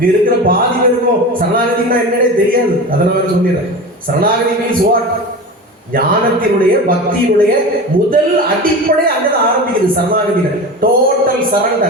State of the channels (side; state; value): both; normal; correlation 0.29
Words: இருக்கிற பாதி பேருக்கும் சரணாகதினா என்னன்னே தெரியாது. அதனால சொல்லிடுறேன். சரணாகதி மீன்ஸ் வாட்? ஞானத்தினுடைய பக்தியினுடைய முதல் அடிப்படை அங்கதான் ஆரம்பிக்குது. சரணாகதியில டோட்டல்